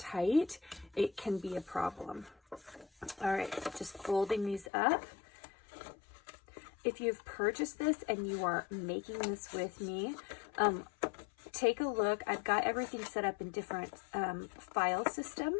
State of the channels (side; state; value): right; drops out; at 4.7 s